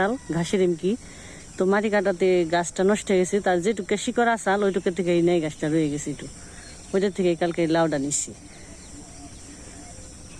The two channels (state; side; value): identical; both; correlation 1.00